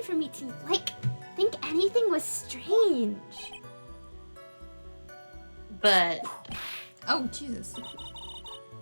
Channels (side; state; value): both; inverted; correlation -1.00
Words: for me to, like, think anything was strange. But... Oh, Jesus.